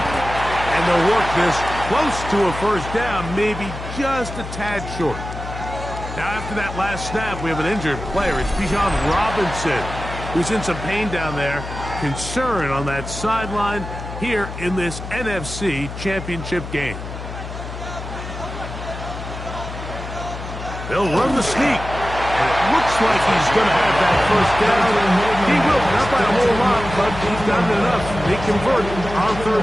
And they'll work this close to a first down, maybe just a tad short. Now, after that last snap, we have an injured player. It's Bijan Robinson, who's in some pain down there. Concern on that sideline here in this NFC Championship game. They'll run the sneak. And it looks like he's going to have that first down. He will, not by a whole lot, but he's done enough. They convert on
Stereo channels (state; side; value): noise; left; hum, 9 dB below the sound